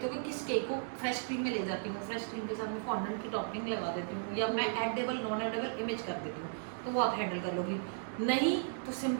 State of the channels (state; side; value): silent; left; digital silence